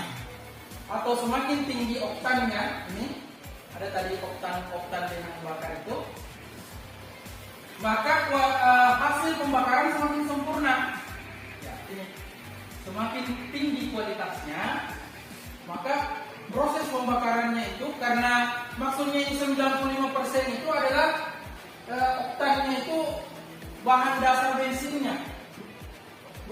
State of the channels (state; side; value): identical; both; correlation 1.00